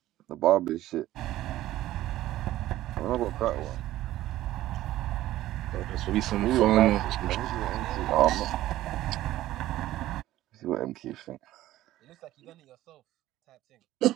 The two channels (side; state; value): left; quieter; 14.8 dB